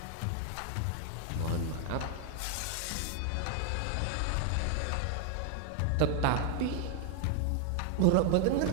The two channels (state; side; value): different; both; correlation 0.00